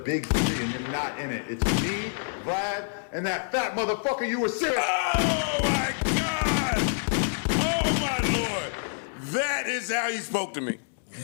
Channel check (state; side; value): silent; right; digital silence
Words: 3 and you're not in it. It's me, Vlad, and that fat motherfucker you were serious. Oh my God! Oh my Lord! That is how he spoke to me.